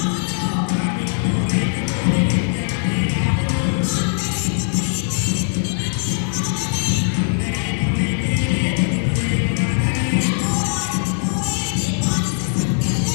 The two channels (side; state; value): right; silent; 66 dB below the other